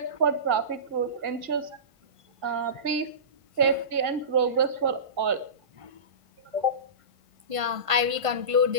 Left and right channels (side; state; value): left; late; 1.5 ms